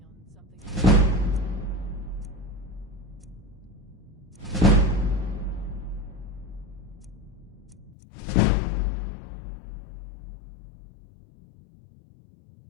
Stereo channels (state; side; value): drops out; right; at 8.0 s